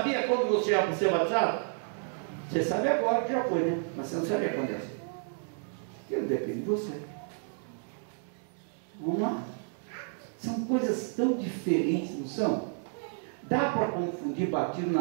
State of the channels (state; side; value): silent; left; 57 dB below the other